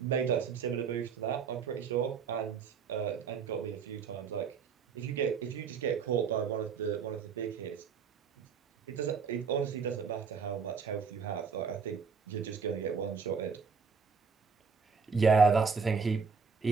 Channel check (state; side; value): quieter; left; 5.6 dB